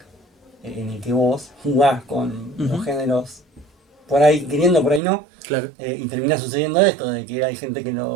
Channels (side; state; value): left; drops out; at 5.0 s